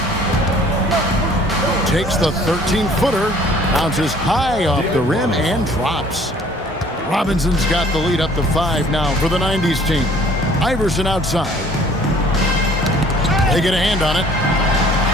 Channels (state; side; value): normal; both; correlation 0.55